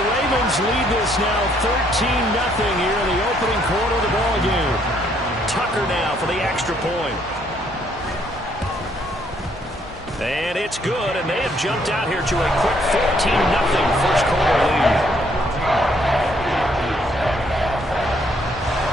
Ravens lead this now 13-0 here in the opening quarter of the ball game. Tucker now for the extra point. And it's good, and they have jumped out here to a quick 14-0 first quarter lead.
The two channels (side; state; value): both; normal; correlation 0.68